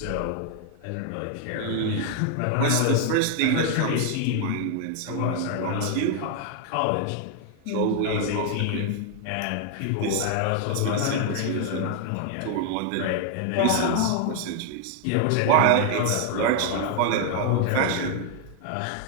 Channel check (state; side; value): different; both; correlation 0.00